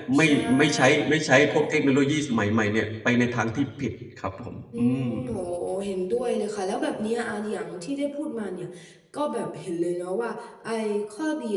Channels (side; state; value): both; identical; correlation 1.00